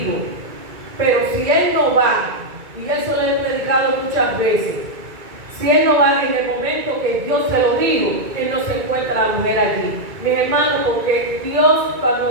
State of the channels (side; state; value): left; late; 2.3 ms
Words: Pero si él no va, y eso lo he predicado muchas veces, si él no va en el momento que Dios se lo dijo, él no se encuentra la mujer allí. Mis hermanos, porque Dios